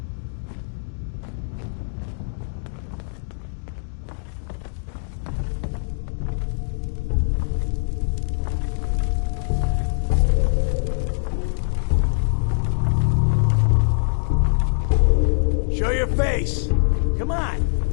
Show your face. Come on.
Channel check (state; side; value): silent; right; digital silence